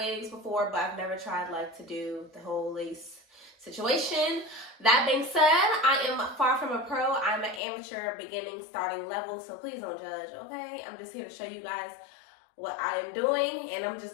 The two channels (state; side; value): drops out; right; at 7.6 s